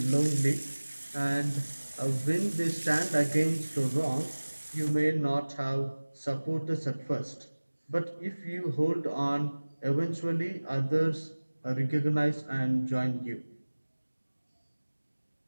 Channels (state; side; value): inverted; both; correlation -1.00